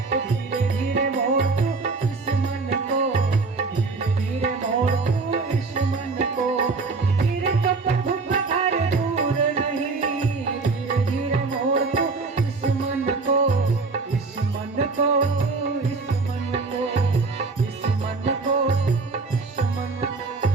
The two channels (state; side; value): quieter; left; 4.0 dB